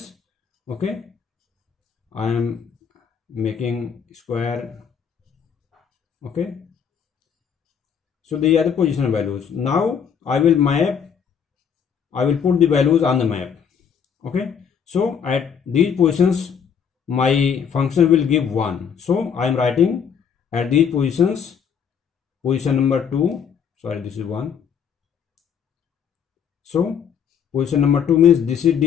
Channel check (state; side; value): quieter; right; 7.4 dB